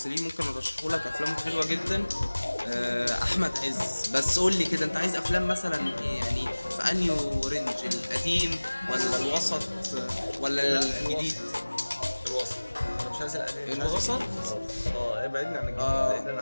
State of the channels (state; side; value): inverted; both; correlation -1.00